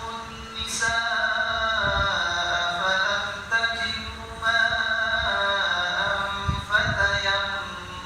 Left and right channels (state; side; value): identical; both; correlation 1.00